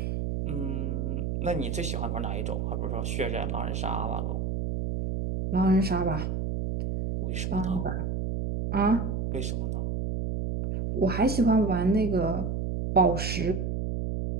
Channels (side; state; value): right; noise; hum, 1 dB below the sound